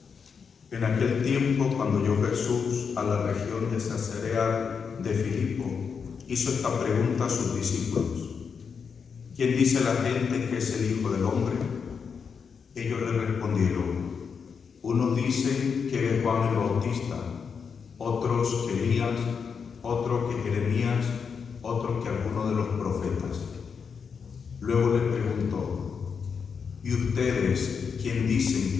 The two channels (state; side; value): quieter; right; 6.1 dB